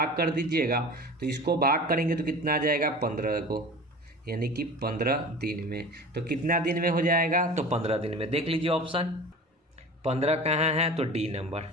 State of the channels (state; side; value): normal; both; correlation 0.37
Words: कर दीजिएगा, तो इसको भाग करेंगे तो कितना आ जाएगा 15 को, यानी कि 15 दिन में। तो कितना दिन में हो जाएगा, तो 15 दिन में। देख लीजिए ऑप्शन 15 कहाँ है, तो डी नंबर,